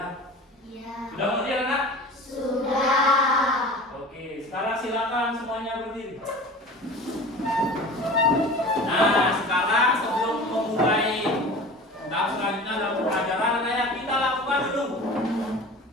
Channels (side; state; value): both; normal; correlation 0.38